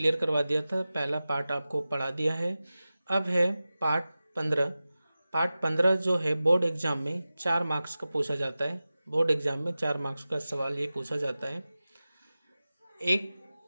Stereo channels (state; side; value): inverted; both; correlation -0.95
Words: करवा दिया था, पहला पार्ट आपको पढ़ा दिया है। अब है पार्ट 15 जो है बोर्ड एग्जाम में 4 मार्क्स का पूछा जाता है। बोर्ड एग्जाम में 4 मार्क्स का सवाल ये पूछा जाता है। एक